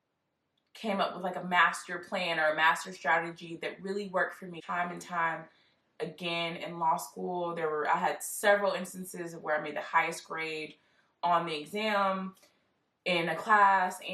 came up with like a master plan or a master strategy that really worked for me time and time again in law school. I had several instances where I made the highest grade on the exam in a class,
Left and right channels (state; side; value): identical; both; correlation 1.00